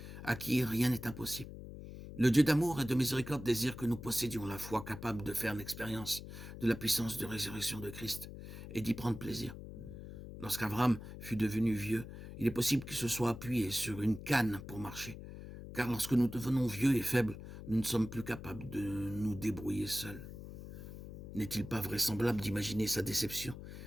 à qui rien n'est impossible. Le Dieu d'amour et de miséricorde désire que nous possédions la foi capable de faire l'expérience de la puissance de résurrection de Christ et d'y prendre plaisir. Lorsqu'Abraham fut devenu vieux, il est possible qu'il se soit appuyé sur une canne pour marcher, car lorsque nous devenons vieux et faibles, nous ne sommes plus capables de nous débrouiller seuls. N'est-il pas vraisemblable d'imaginer sa déception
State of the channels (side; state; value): left; noise; hum, 12 dB below the sound